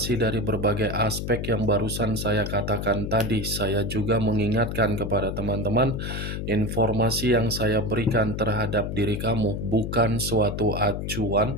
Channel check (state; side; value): noise; left; hum, 4 dB below the sound